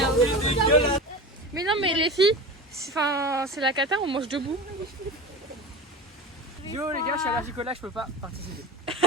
Mais non, mais les filles, c'est la cata, on mange debout. Yo les gars, je suis allergique au lac, je peux pas participer.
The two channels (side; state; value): both; normal; correlation 0.30